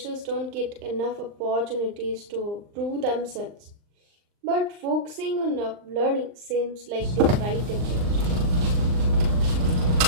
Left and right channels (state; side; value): late; left; 39 ms